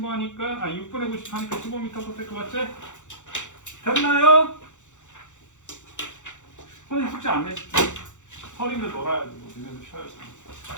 하니까 6분의 90 하니까 15m/s 맞지? 됐나요? 선생님 숙제 안 냈지? 설인데 놀아야지. 뭐 니네도 쉬어야지.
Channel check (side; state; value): right; late; 0.85 ms